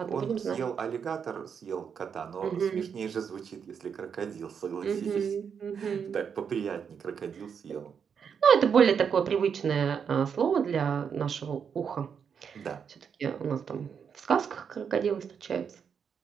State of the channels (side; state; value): left; quieter; 7.0 dB